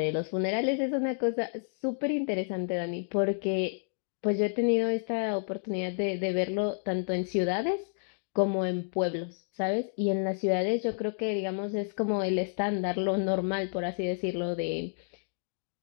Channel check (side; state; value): right; silent; digital silence